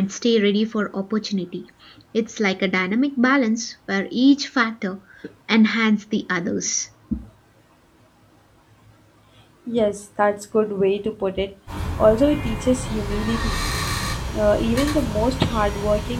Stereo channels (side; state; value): both; identical; correlation 1.00